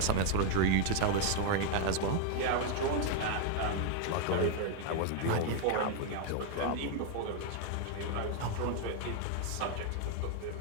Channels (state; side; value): different; both; correlation 0.00